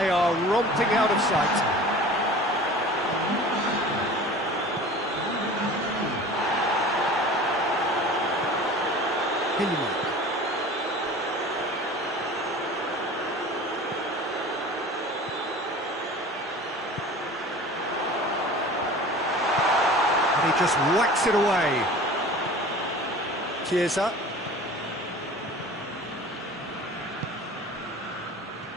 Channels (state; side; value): normal; both; correlation 0.40